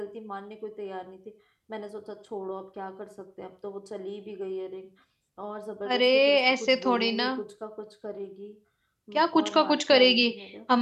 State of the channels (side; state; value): both; identical; correlation 1.00